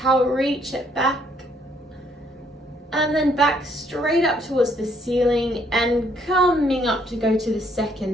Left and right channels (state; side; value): normal; both; correlation 0.68